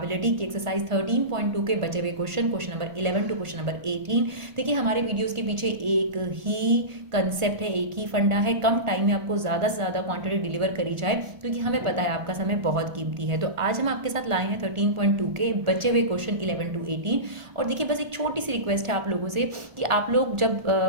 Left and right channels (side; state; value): left; late; 1.5 ms